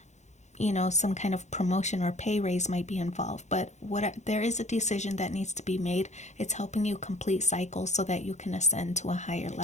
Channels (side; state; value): right; late; 0.33 ms